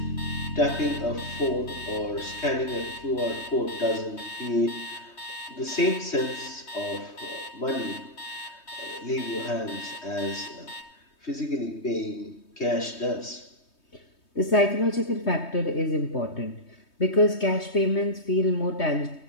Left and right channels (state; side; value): late; right; 3.2 ms